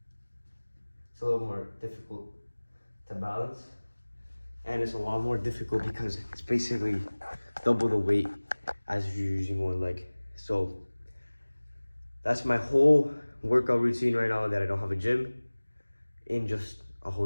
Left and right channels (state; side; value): inverted; both; correlation -1.00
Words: It's a little more difficult to balance, and it's a lot more difficult because it's basically double the weight as if you're using 1 leg. So that's my whole workout routine right now that I don't have a gym, in just a